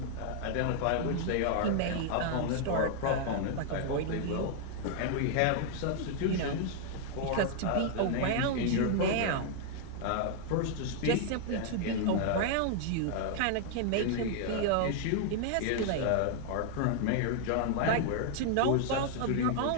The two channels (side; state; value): both; different; correlation 0.00